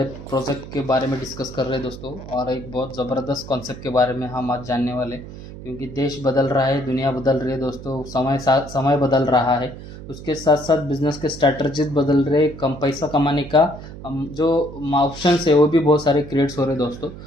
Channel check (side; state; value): right; noise; hum, 13 dB below the sound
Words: प्रोजेक्ट के बारे में डिस्कस कर रहे हैं दोस्तों, और एक बहुत ज़बरदस्त कॉन्सेप्ट के बारे में हम आज जानने वाले, क्योंकि देश बदल रहा है, दुनिया बदल रही है दोस्तों, समय बदल रहा है। उसके साथ साथ बिजनेस के स्ट्रैटेजीज बदल रहे, कम पैसा कमाने का जो ऑप्शन है वो भी बहुत सारे क्रिएट्स हो रहे हैं दोस्तों।